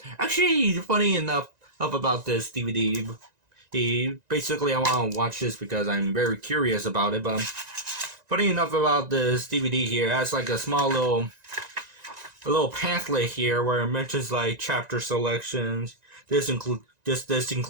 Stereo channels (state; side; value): late; left; 1.9 ms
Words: actually, funny enough about this DVD, basically I want to watch this because I'm very curious about it, but funny enough about this DVD here, it has like a small little pamphlet here where it mentions like chapter selections. This